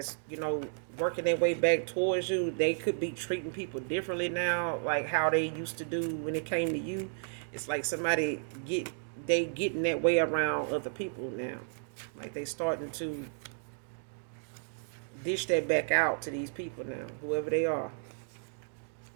working their way back towards you, they could be treating people differently now, like how they used to do when it came to you. It's like somebody getting that way around other people now. Like they starting to dish that back out to these people now, whoever they are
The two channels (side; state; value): left; silent; digital silence